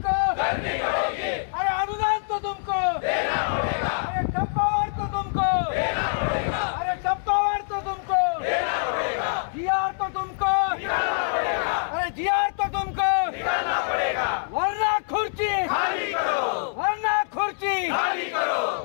करनी होगी, अरे अनुदान तो तुमको देना होगा, अरे टप्पावार तो तुमको देना होगा, अरे टप्पावार तो तुमको देना होगा, जीआर तो तुमको निकालना पड़ेगा, अरे जीआर तो तुमको निकालना पड़ेगा, वरना खुर्ची खाली करो, वरना खुर्ची खाली करो।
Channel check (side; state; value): right; silent; 62 dB below the other